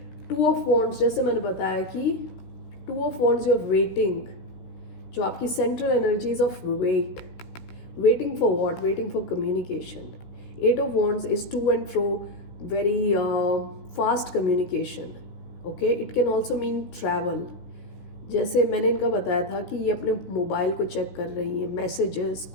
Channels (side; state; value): right; late; 16 ms